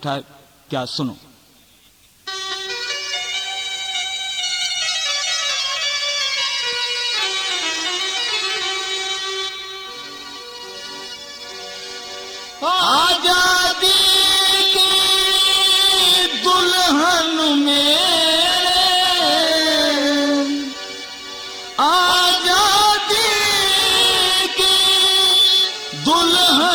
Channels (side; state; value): both; identical; correlation 1.00